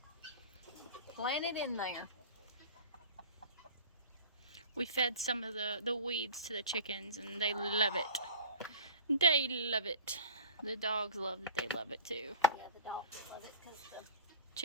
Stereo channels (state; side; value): inverted; both; correlation -0.39